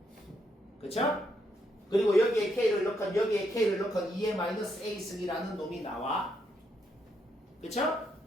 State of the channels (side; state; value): both; normal; correlation 0.77